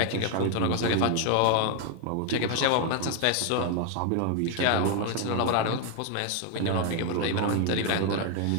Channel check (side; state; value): both; different; correlation 0.01